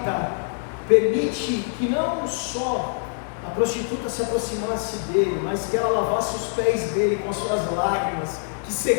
permite que não só a prostituta se aproximasse dele, mas que ela lavasse os pés dele com as suas lágrimas, que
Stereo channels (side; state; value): right; silent; digital silence